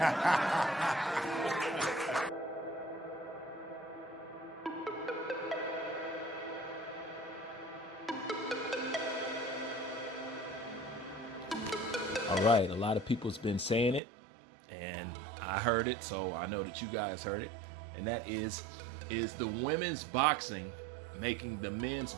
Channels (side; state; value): left; drops out; at 14.0 s